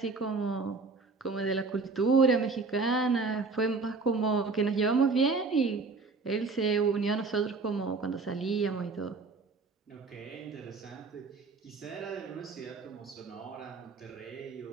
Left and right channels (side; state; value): left; quieter; 4.2 dB